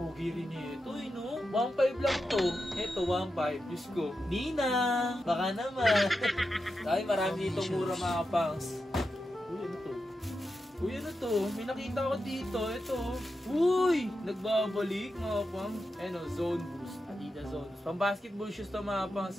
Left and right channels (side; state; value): both; normal; correlation 0.89